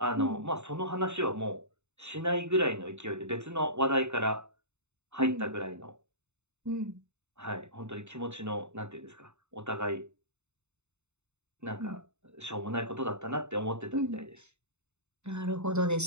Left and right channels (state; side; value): late; left; 0.82 ms